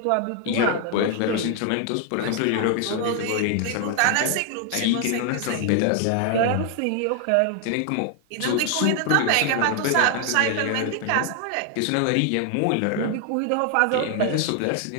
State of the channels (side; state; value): both; different; correlation 0.00